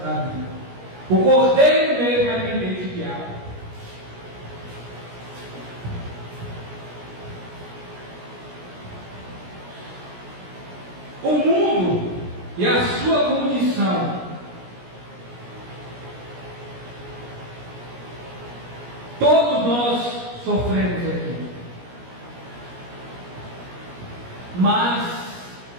vida. O Cordeiro mesmo é quem tem te guiado. O mundo e a sua condição, todos nós sofremos aqui, mas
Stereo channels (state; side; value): late; left; 17 ms